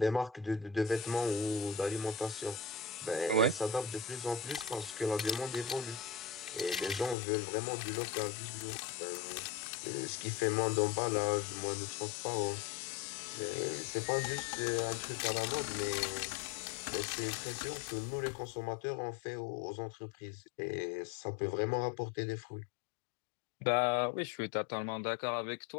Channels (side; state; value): right; drops out; at 7.2 s